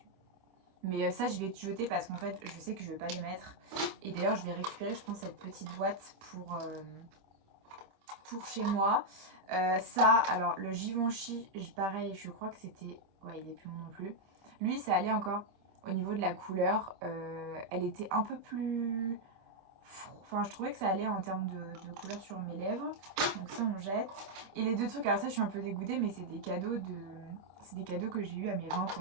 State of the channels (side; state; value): left; late; 26 ms